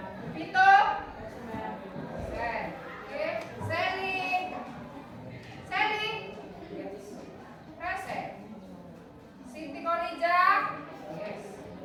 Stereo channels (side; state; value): both; identical; correlation 1.00